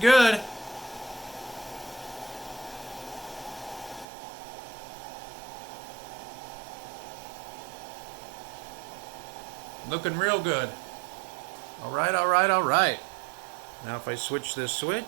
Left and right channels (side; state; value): left; drops out; at 4.0 s